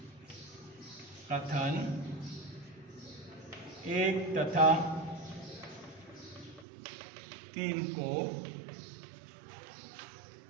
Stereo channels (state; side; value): drops out; left; at 6.7 s